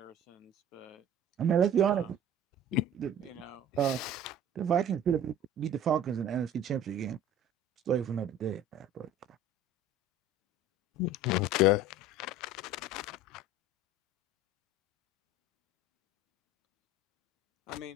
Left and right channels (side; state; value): both; normal; correlation 0.44